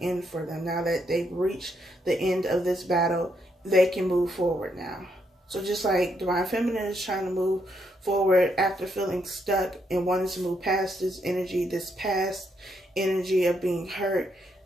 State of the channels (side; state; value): both; normal; correlation 0.77